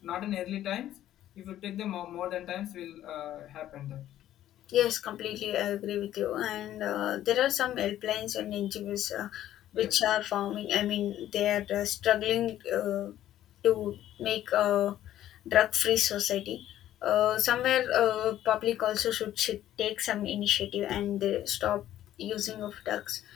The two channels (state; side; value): quieter; right; 12.6 dB